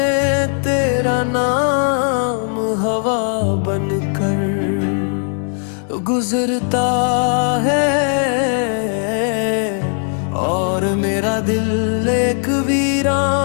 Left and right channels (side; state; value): right; silent; 55 dB below the other